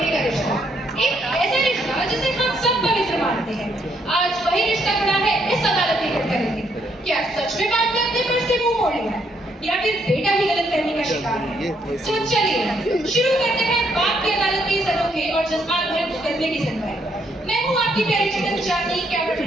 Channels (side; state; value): both; normal; correlation 0.73